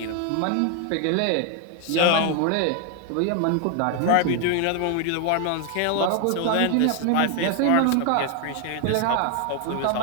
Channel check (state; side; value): different; both; correlation 0.01